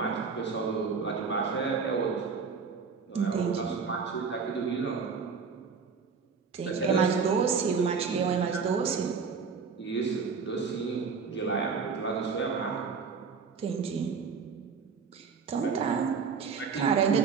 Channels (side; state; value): left; quieter; 5.5 dB